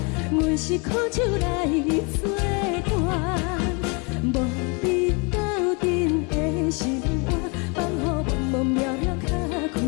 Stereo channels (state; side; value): quieter; right; 32.3 dB